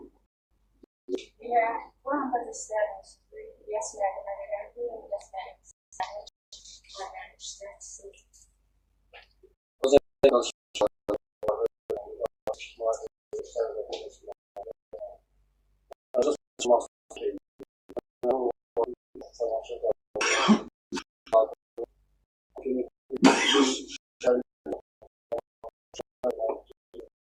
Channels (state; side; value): identical; both; correlation 1.00